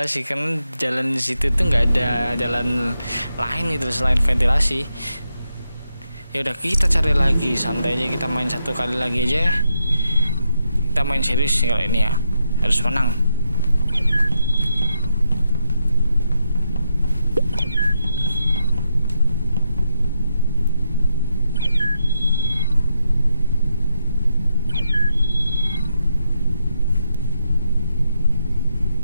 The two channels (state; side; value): inverted; both; correlation -0.82